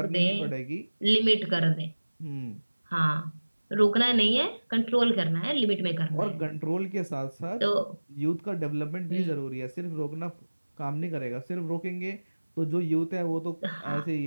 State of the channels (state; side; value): inverted; both; correlation -1.00